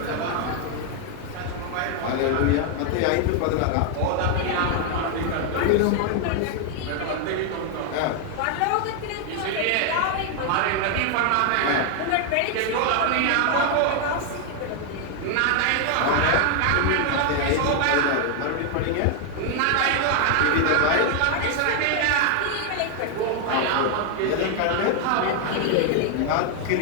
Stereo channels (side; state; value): both; different; correlation 0.00